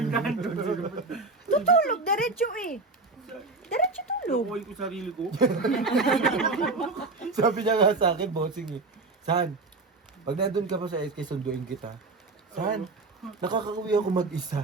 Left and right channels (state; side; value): quieter; left; 3.6 dB